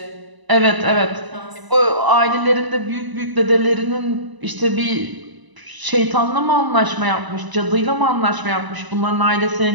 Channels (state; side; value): late; left; 1.0 ms